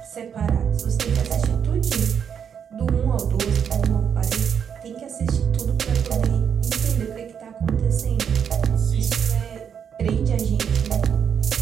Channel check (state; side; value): quieter; left; 7.7 dB